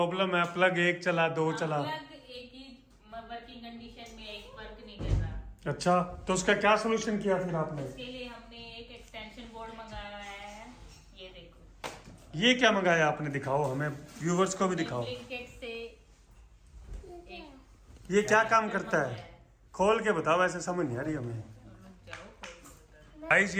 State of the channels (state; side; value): identical; both; correlation 1.00